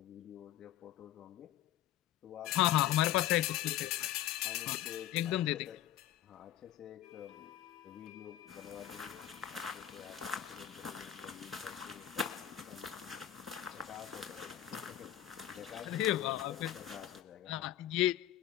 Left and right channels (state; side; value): quieter; right; 12.3 dB